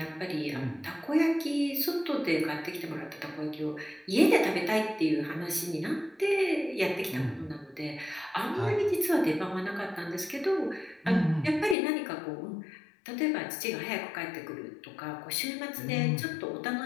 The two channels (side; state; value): right; drops out; at 11.8 s